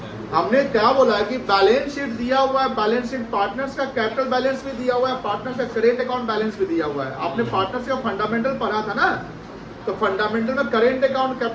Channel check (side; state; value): both; identical; correlation 1.00